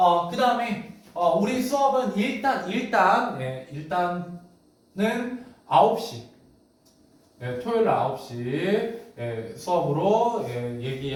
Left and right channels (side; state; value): both; identical; correlation 1.00